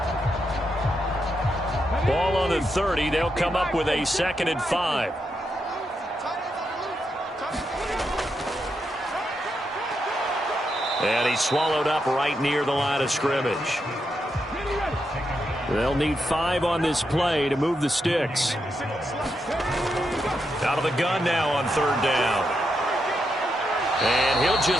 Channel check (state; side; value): normal; both; correlation 0.83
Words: Ball on the 30. They'll come up with a 2nd and 5. And he's swallowed up right near the line of scrimmage. They'll need 5 on this play to move the sticks. Out of the gun now on 3rd down. And he'll